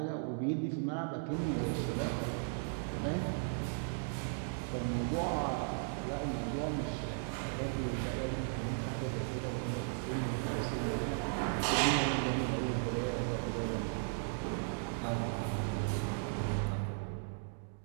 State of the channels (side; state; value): left; silent; digital silence